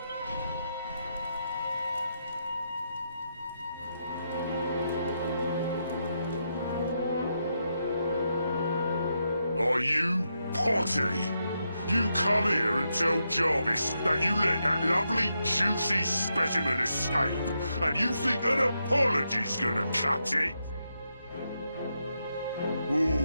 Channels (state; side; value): inverted; both; correlation -0.83